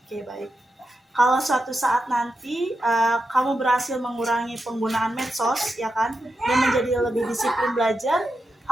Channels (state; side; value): normal; both; correlation 0.88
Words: baik. Kalau suatu saat nanti kamu berhasil mengurangi penggunaan medsos, ya kan, dan menjadi lebih disiplin belajar,